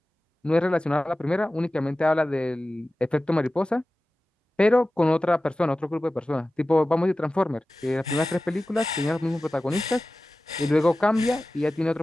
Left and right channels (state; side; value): normal; both; correlation 0.96